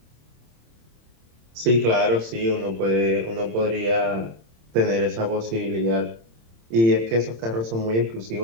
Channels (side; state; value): left; late; 26 ms